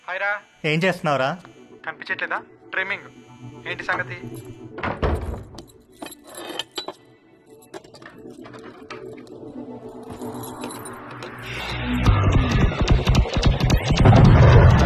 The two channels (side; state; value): both; identical; correlation 1.00